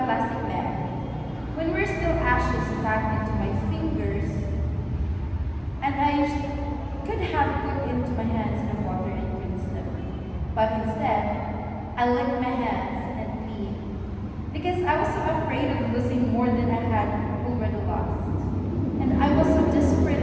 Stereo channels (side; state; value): both; identical; correlation 1.00